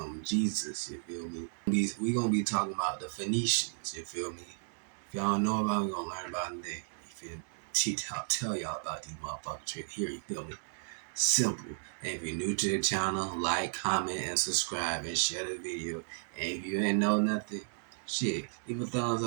Jesus. You feel me? We gonna be talking about the Phoenicians. You feel me? If y'all don't know about it, we gonna learn about them today. You feel me? Tell y'all about these motherfuckers right here. You feel me? Simple. And if you're new to the channel, like, comment, and subscribe, and share the video. And if you ain't know nothing, shit, leave a thumbs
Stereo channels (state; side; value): silent; left; digital silence